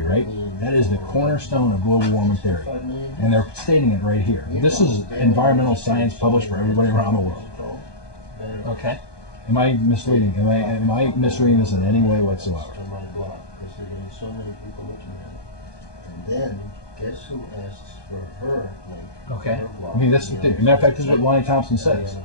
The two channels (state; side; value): late; right; 1.2 ms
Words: right? That is the cornerstone of global warming theory. And they're stating it right here. This is environmental science published for everybody around the world. Okay. Am I misleading? Am I misreading this in any way whatsoever? On my blog, because there are getting so many people looking at it. And then, guess who asks for her link? Okay. Her blog. I mean, that's the thing. Matter of fact, this is what Lonnie Thompson says.